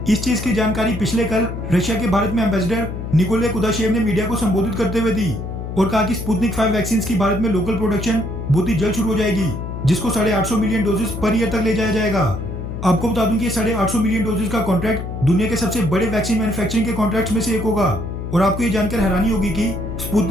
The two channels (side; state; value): left; noise; hum, 6 dB below the sound